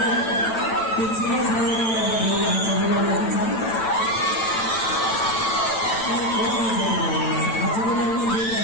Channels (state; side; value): late; right; 9.0 ms